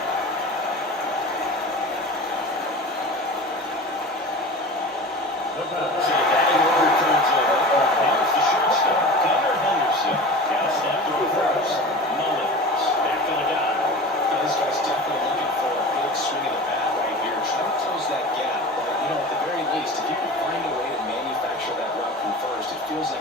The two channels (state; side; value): normal; both; correlation 0.35